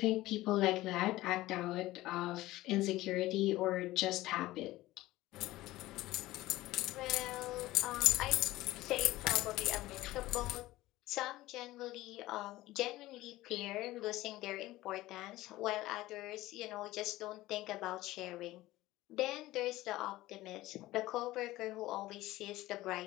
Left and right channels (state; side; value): quieter; right; 17.3 dB